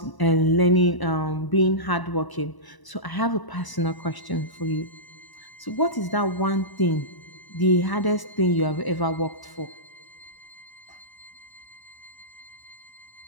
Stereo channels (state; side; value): late; right; 1.0 ms